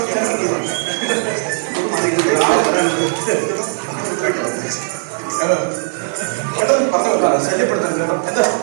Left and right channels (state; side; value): silent; left; digital silence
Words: ഒന്നും ശല്യപ്പെടുത്തരുത് കേട്ടോ. എന്താ